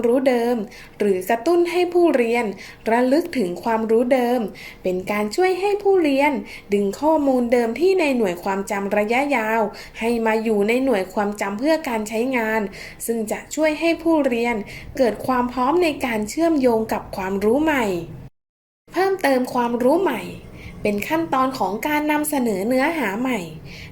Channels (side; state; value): both; identical; correlation 1.00